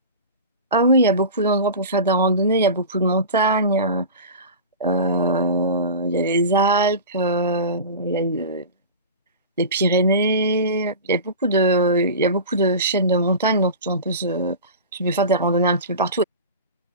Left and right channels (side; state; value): both; inverted; correlation -0.31